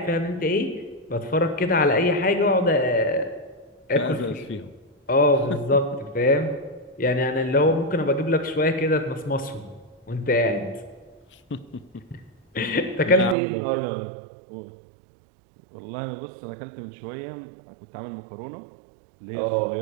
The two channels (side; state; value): left; drops out; at 13.4 s